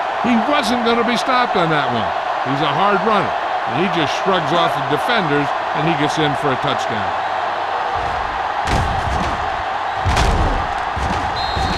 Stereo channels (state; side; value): identical; both; correlation 1.00